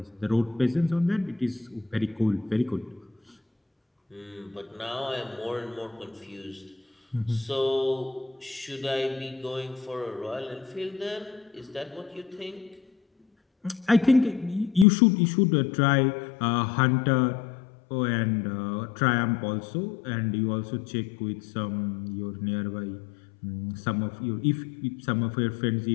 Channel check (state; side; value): drops out; right; at 14.9 s